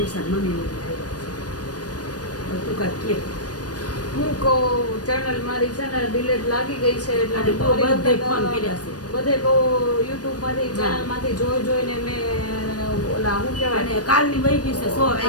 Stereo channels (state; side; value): late; right; 0.68 ms